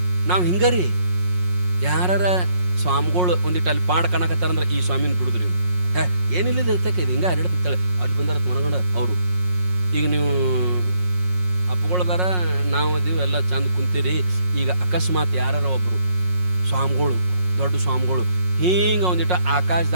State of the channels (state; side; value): late; left; 5.5 ms